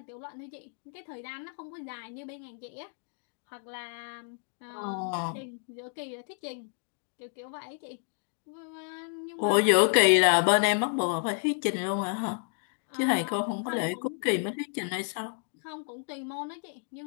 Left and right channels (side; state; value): right; silent; 57 dB below the other